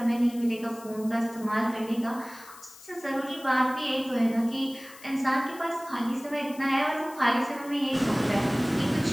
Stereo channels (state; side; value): noise; left; hiss, 20 dB below the sound